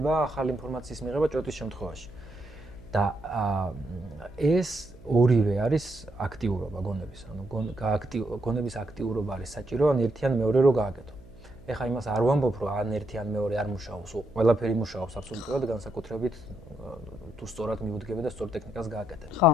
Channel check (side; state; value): right; noise; hum, 22 dB below the sound